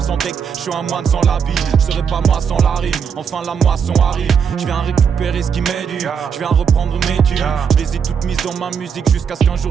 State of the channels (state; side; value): quieter; left; 6.9 dB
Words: sans deck. Je suis un moine sans l'habit, je serai pas moi sans la rime, enfin la moisson arrive. Je viens récupérer ce qui m'est dû, je viens reprendre mes thunes. Je les ai toutes mises dans ma musique jusqu'à ce qu'un